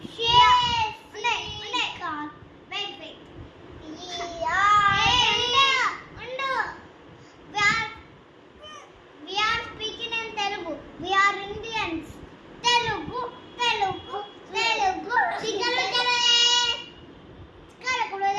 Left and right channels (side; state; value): both; identical; correlation 1.00